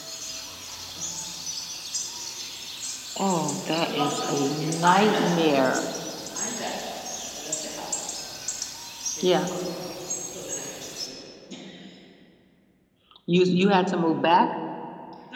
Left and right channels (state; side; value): identical; both; correlation 1.00